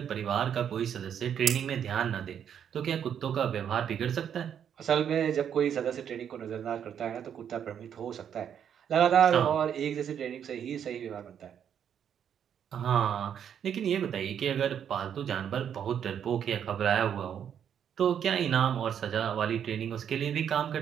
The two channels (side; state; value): left; quieter; 8.7 dB